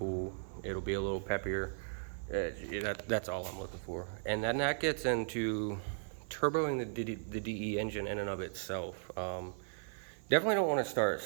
it'll be a little peppier. That's all I'm looking for. And then that gets into turboing the DE engine in and of itself. Definitely don't want to start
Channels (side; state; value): left; silent; digital silence